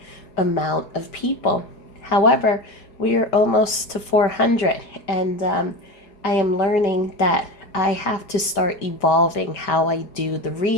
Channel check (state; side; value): late; right; 5.1 ms